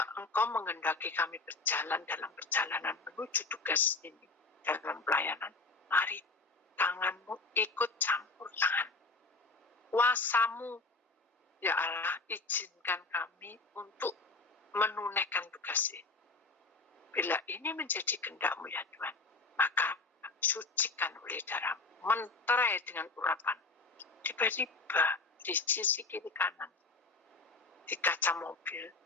Engkau menghendaki kami berjalan dalam perjalanan menuju tugas ini, dalam pelayanan, mari tangan-Mu ikut campur tangan. Kuasa-Mu, ya Allah, izinkan kami untuk menunaikan tugas ini. Bila ini menjadi kehendak-Mu ya Tuhan, maka sucikan oleh darah-Mu." Menterai dengan urapan. Tiba-tiba di sisi kiri kanan, di kaca mobil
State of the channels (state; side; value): quieter; right; 3.7 dB